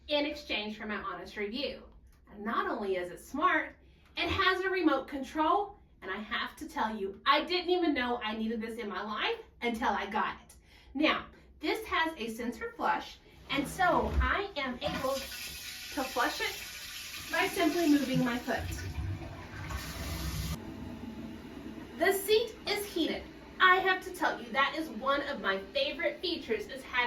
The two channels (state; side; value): identical; both; correlation 1.00